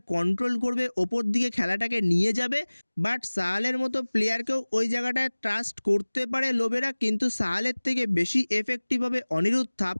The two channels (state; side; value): inverted; both; correlation -1.00